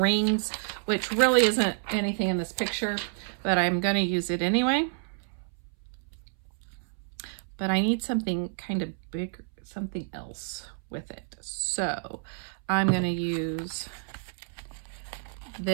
which really isn't anything in this picture, but I'm going to use it anyway. But I need something kind of big, something else with it. So I'm going to use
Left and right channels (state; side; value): silent; left; 58 dB below the other